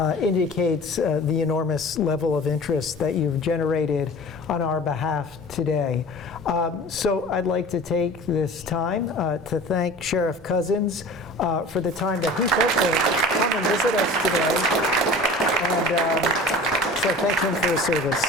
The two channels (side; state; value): both; normal; correlation 0.40